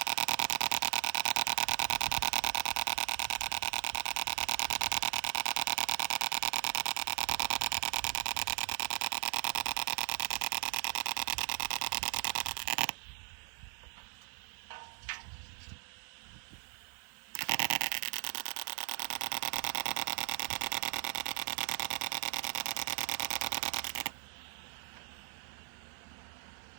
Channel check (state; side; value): silent; left; digital silence